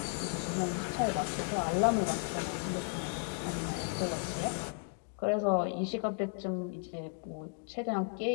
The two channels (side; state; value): right; silent; 55 dB below the other